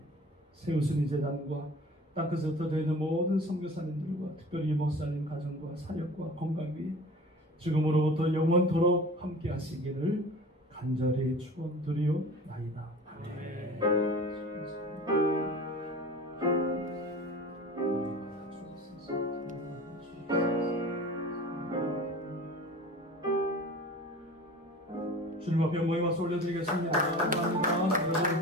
세우신 이 제단과 땅끝에 흩어져 있는 모든 선교사님들과 특별히 목사님 가정과 사역과 건강 위에 지금으로부터 영원토록 함께 하시기를 간절히 축원드리옵나이다. 아멘. 주님 앞에 모임 와서 올려드리겠습니다. 감사합니다.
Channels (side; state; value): both; normal; correlation 0.40